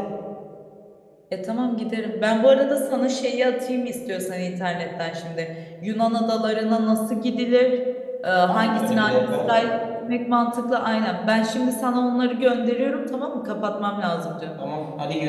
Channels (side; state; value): both; identical; correlation 1.00